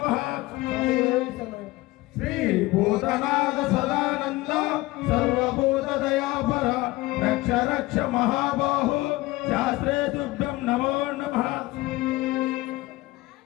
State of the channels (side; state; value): right; quieter; 19.8 dB